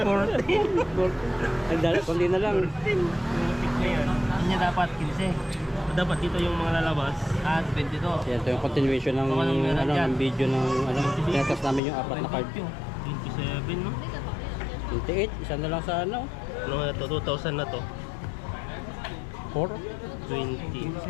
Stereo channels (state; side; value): drops out; right; at 11.8 s